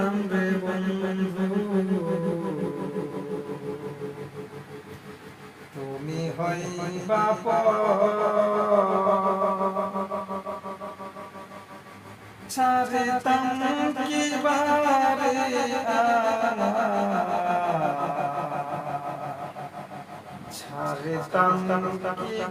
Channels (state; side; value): identical; both; correlation 1.00